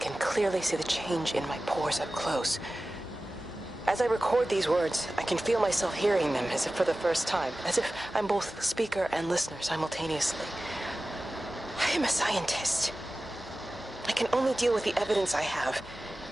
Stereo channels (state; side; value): normal; both; correlation 0.96